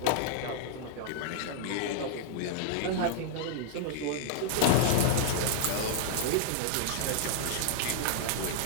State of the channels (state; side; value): different; both; correlation -0.01